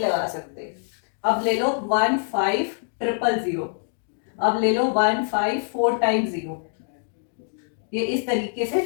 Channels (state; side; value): silent; right; digital silence